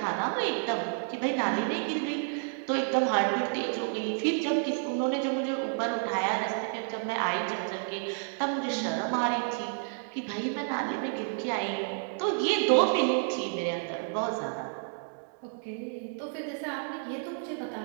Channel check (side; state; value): left; silent; 58 dB below the other